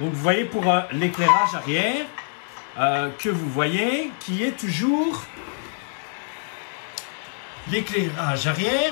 vous voyez pour l'éclairage arrière que vous voyez qui est toujours l'éclairage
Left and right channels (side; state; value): right; silent; 62 dB below the other